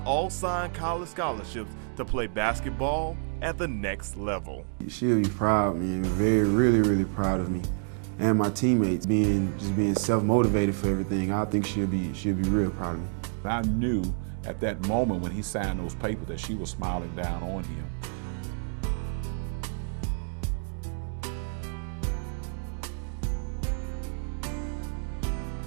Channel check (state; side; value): silent; left; 59 dB below the other